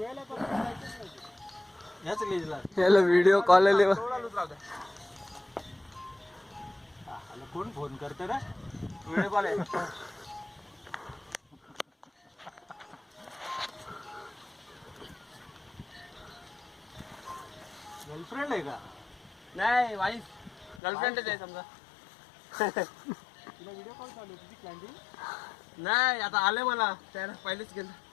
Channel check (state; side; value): drops out; right; at 20.8 s